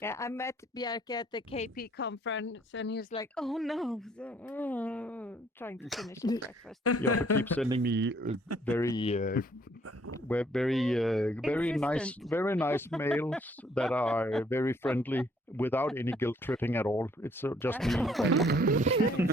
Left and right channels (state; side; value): normal; both; correlation 0.64